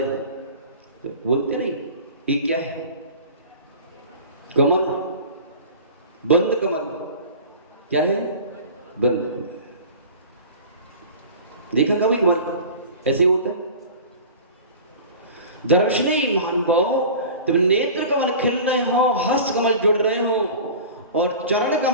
हैं, तो बोलते नहीं ये क्या है? कमल, बंद कमल। क्या है? बंद कमल। देखा कभी कमल ऐसे ही होता है? दर्शनी महानुभाव, जब नेत्र कमल खिल रहे हो, हस्त कमल जुड़ रहे हो, और चरण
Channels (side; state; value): both; inverted; correlation -0.38